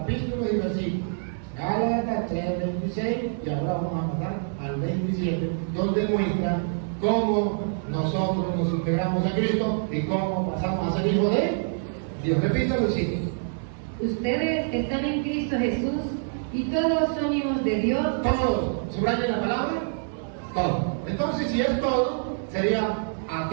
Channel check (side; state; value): left; silent; digital silence